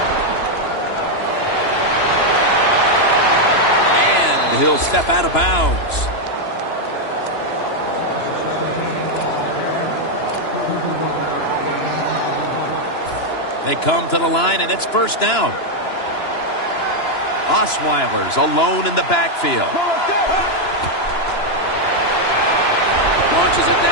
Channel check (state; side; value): late; right; 2.9 ms